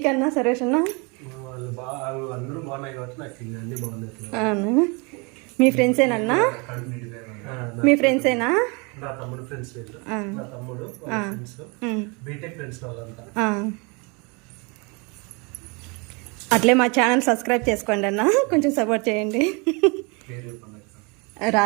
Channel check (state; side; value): quieter; left; 30.4 dB